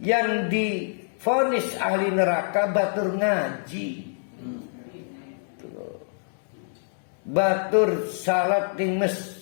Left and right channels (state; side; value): silent; right; 61 dB below the other